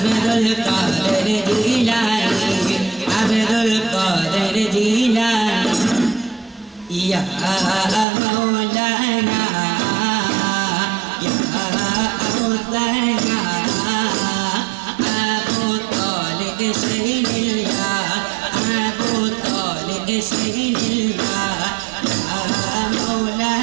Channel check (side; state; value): left; drops out; at 8.1 s